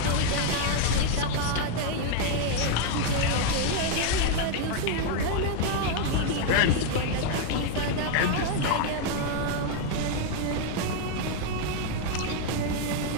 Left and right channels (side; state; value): both; different; correlation 0.00